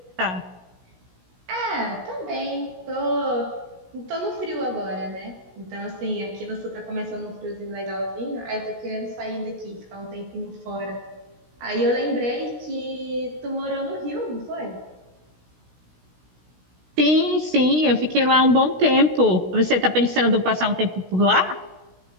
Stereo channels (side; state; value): left; late; 16 ms